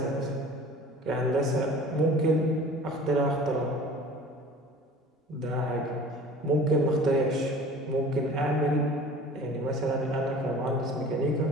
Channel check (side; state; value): both; normal; correlation 0.44